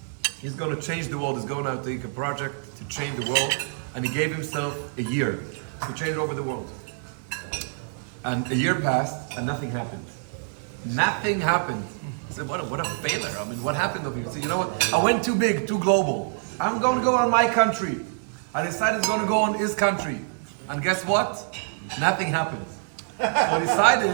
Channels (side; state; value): left; silent; digital silence